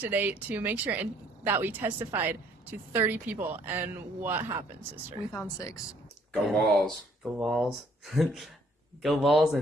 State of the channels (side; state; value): both; normal; correlation 0.63